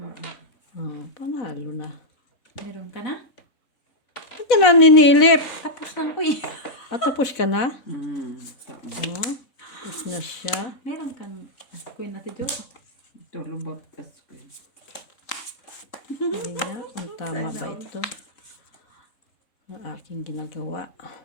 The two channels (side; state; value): right; late; 4.1 ms